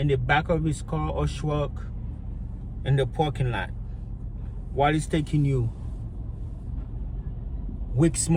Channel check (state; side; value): identical; both; correlation 1.00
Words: the back of his car or truck in the parking lot while he's taking you weeks,